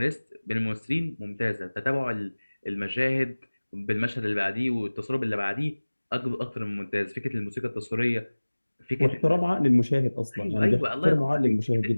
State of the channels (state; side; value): inverted; both; correlation -1.00